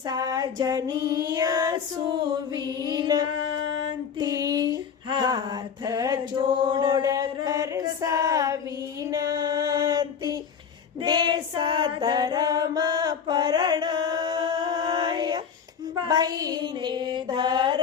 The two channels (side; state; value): right; quieter; 7.0 dB